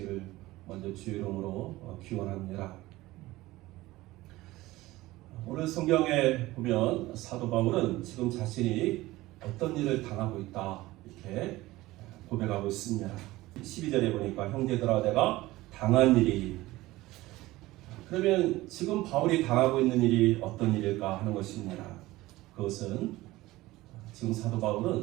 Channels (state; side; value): quieter; left; 18.3 dB